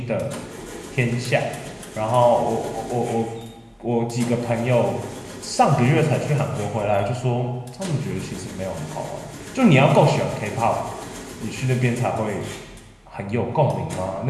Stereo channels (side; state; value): both; identical; correlation 1.00